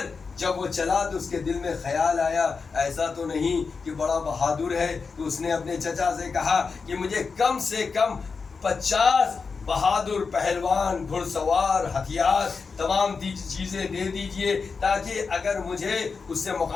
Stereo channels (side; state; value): right; quieter; 5.0 dB